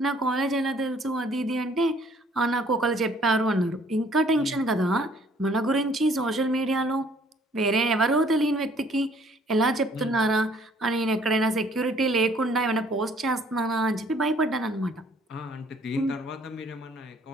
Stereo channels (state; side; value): normal; both; correlation 0.60